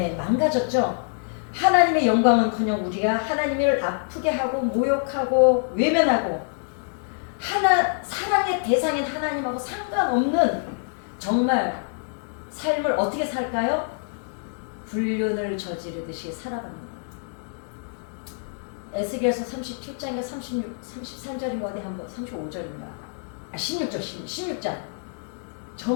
망가졌죠. 하나님의 영광은커녕 우리가 하나님을 아프게 하고 모욕하고 외면하고 사랑의 대상인 하나님하고 상관없는 정말 삶을 어떻게 살까요? 불륜을 저지르듯이 살아갑니다. 에스겔서 37장인가 33절인가 어디 한번 35절인가 16장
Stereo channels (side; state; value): right; silent; 61 dB below the other